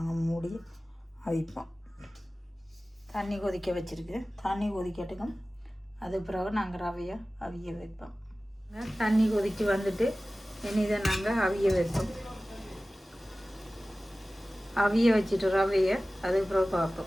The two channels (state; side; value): normal; both; correlation 0.97